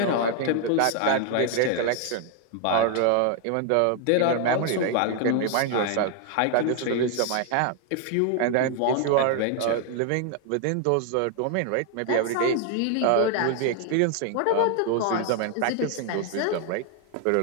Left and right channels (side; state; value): both; different; correlation 0.01